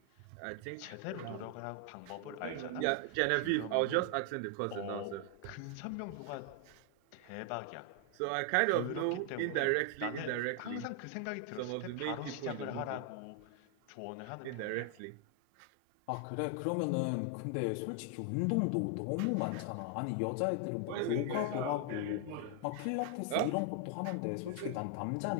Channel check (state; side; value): different; both; correlation 0.00